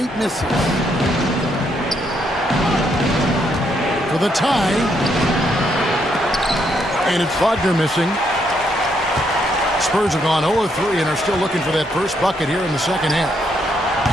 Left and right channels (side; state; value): both; normal; correlation 0.75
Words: misses. For the tie, and it's Wagner missing. Spurs have gone 0-3 and are still looking for that first bucket here in the second half.